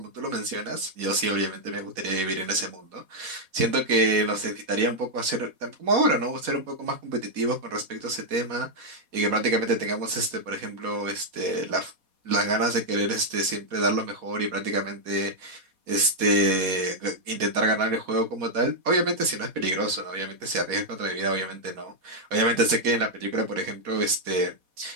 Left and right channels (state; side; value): late; left; 4.2 ms